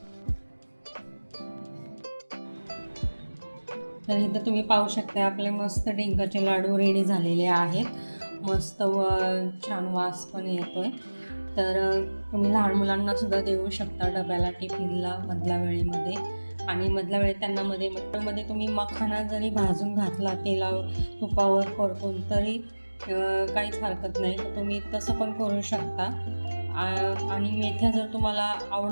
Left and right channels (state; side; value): inverted; both; correlation -1.00